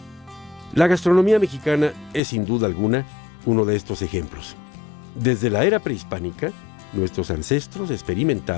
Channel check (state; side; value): drops out; right; at 2.2 s